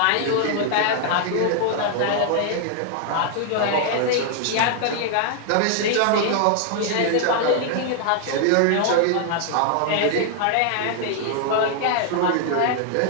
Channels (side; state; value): both; different; correlation 0.00